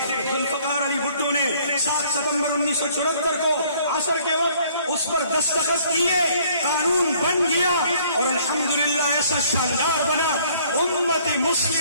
ذوالفقار علی بھٹو نے 7 ستمبر 1974 کو عصر کے وقت اس پر دستخط کیے، قانون بن گیا اور الحمدللہ ایسا شاندار بنا، امت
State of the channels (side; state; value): both; inverted; correlation -0.60